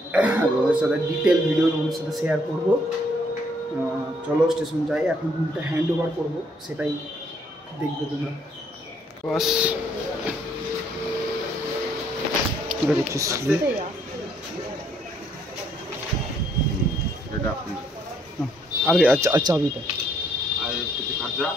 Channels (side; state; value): both; normal; correlation 0.68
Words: ওদের সাথে ডিটেল ভিডিও তোমাদের সাথে শেয়ার করবো। চলো স্টেশন যাই। এখন রুমটা হ্যান্ড ওভার করবো, সেটাই দেখবে তোমরা। বাস আরে আচ্ছা আচ্ছা চাবিটা আর কিছু খরচা,